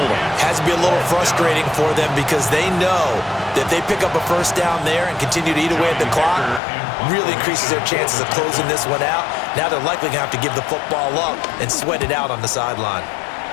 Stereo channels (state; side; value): drops out; right; at 6.6 s